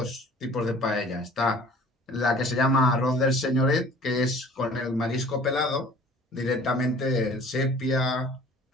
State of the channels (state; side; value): normal; both; correlation 0.49